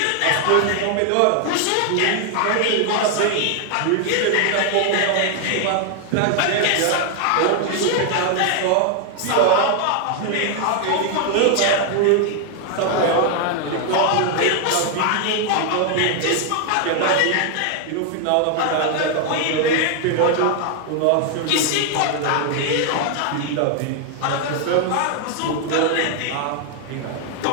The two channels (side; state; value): both; different; correlation 0.00